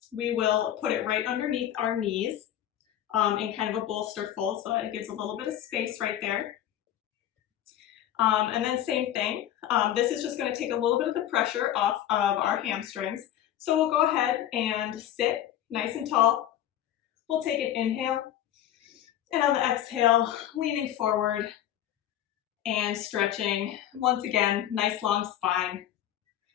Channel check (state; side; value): quieter; right; 11.7 dB